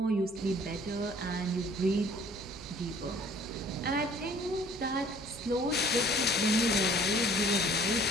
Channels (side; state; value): left; noise; hum, 25 dB below the sound